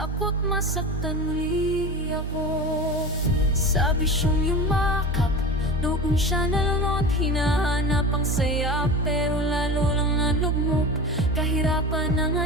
masaktan muli ako. Sa bisyong yumakap, noong siya nalunod, hinahanap ang saya, pero lalo lang ang lugmok. Kahirapan ng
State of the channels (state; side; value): normal; both; correlation 0.29